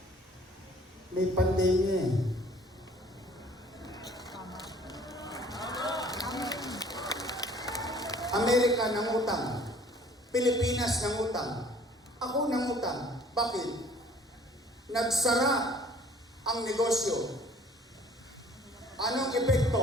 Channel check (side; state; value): both; normal; correlation 0.54